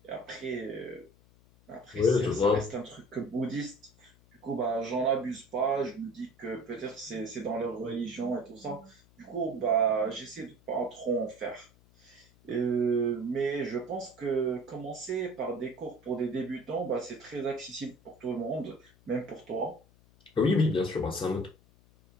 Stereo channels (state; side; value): noise; left; hum, 28 dB below the sound